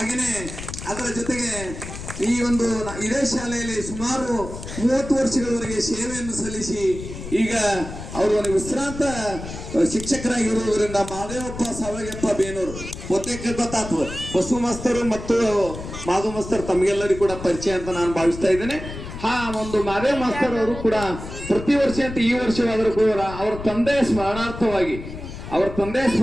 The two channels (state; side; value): noise; left; rumble, 10 dB below the sound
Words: ಅದರ ಜೊತೆಗೆ ಈ ಒಂದು ಇದೇ ಶಾಲೆಯಲ್ಲಿ ಸುಮಾರು 30 ವರ್ಷಗಳವರೆಗೆ ಸೇವೆಯನ್ನು ಸಲ್ಲಿಸಿ ಈಗ ಅವರು ಒಂದು ವಿಶ್ರಾಂತ ಶಿಕ್ಷಕರಾಗಿರುವುದರಿಂದ ಮಾದೇವಪ್ಪ ಸಾವಗಪ್ಪ ಬೇನೂರು ಬಹುತೇಕ ಗೊತ್ತಾಗ್ತದೆ. ಬಸು ಮಾಸ್ತರು ಮತ್ತು ಮಾಧವ ಮಾಸ್ತರ್ ತಮಗೆಲ್ಲರಿಗೂ ಕೂಡ ಪರಿಚಯ ಅಂತ ನಾನು ಭಾವಿಸ್ತಾ ಇದ್ದೇನೆ. ಒಂದು ಮಾದೇವ ಮಾಸ್ತರ್ ಅವರು ಕೂಡ ಪ್ರತಿ ವರ್ಷ ಈ ವರ್ಷವಾದರೂ ಕೂಡ ಅವರ ತಂದೆಯ ಸ್ಮರಣಾರ್ಥವಾಗಿ ಅವರ ತಂದೆ